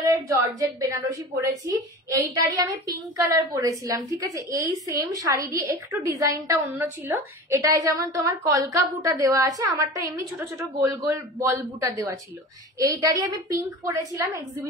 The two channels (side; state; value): both; normal; correlation 0.34